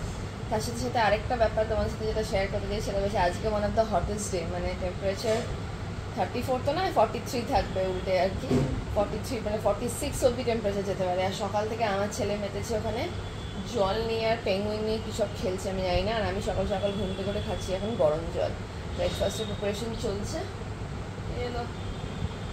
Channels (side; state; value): both; identical; correlation 1.00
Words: তার সাথে সাথে আরেকটা ব্যাপার তোমাদের সাথে যেটা শেয়ার করতে চাই, সেটা হচ্ছে আজকে one of the hottest day, মানে টেম্পারেচার 34 তো না 43 থাকবে উল্টে আর কি, 43 মানে 46 অব্দি টেম্পারেচার যেতে পারে। আর সকাল থেকে আমার ছেলে মেতেছে ওখানে জল নিয়ে আর পেঙ্গুইন নিয়ে কী সব খেলছে আমি জানি না। আর আমি সকাল সকাল ঘুম থেকে করে খাচ্ছি এখন গরম জল। ব্রেকফাস্টের প্রিপারেশন চলছে।